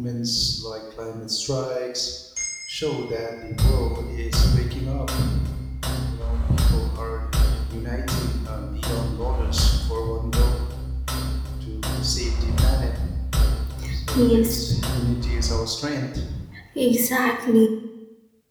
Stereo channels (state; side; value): identical; both; correlation 1.00